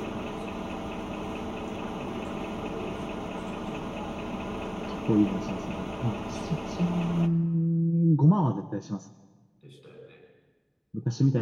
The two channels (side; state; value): both; identical; correlation 1.00